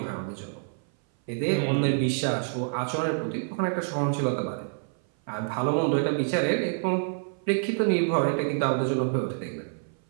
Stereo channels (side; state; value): left; silent; 57 dB below the other